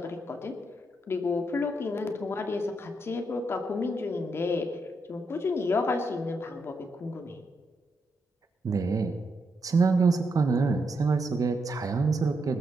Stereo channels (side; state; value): both; normal; correlation 0.81